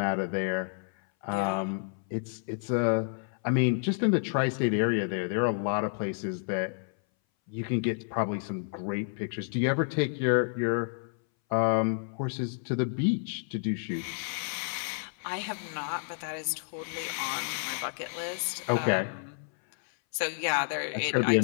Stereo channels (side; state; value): right; silent; 58 dB below the other